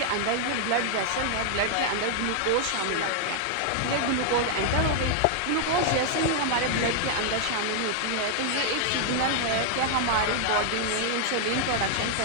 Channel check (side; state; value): both; different; correlation 0.00